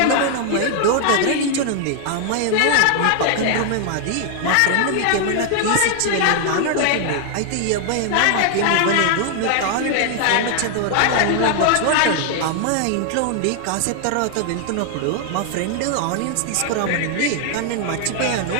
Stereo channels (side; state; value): both; different; correlation 0.00